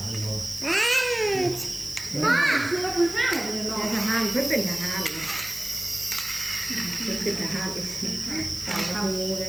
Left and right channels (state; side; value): noise; right; hiss, 14 dB below the sound